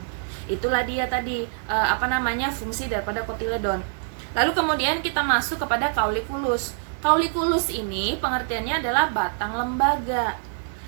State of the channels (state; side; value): silent; left; digital silence